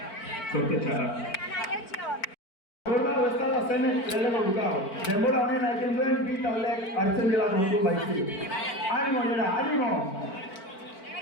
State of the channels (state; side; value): late; right; 4.4 ms